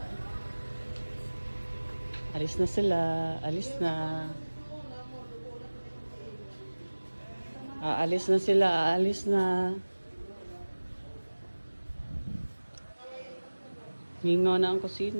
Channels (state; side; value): inverted; both; correlation -1.00